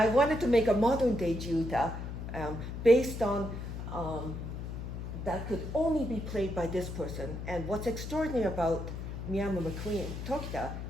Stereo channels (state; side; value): noise; left; hum, 7 dB below the sound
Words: wanted to make a modern day jiuta based on that could only be played by this person. And what's extraordinary about Miyama McQueen Tokita